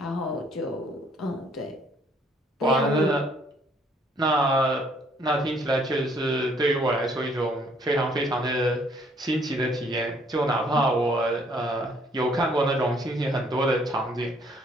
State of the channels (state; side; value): normal; both; correlation 0.64